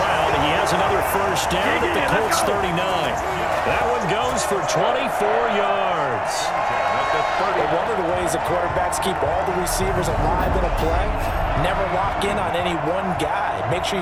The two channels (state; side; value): identical; both; correlation 1.00